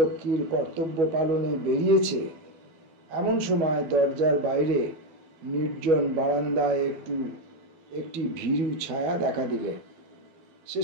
কর্তব্য পালনে বেরিয়েছে, এমন সময় দরজার বাইরে নির্জন বারান্দায় একটি ভীরু ছায়া দেখা দিলে।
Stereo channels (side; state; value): left; late; 12 ms